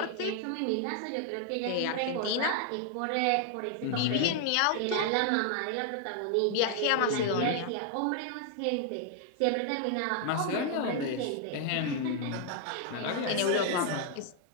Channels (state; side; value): different; both; correlation 0.00